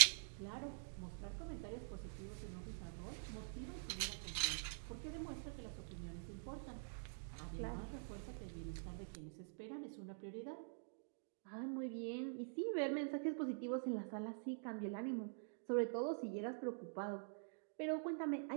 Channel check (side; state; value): left; silent; digital silence